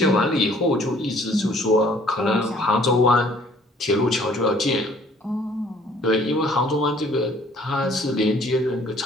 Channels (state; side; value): normal; both; correlation 0.58